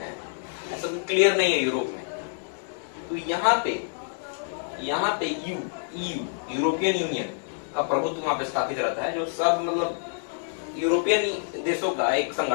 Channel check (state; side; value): silent; right; digital silence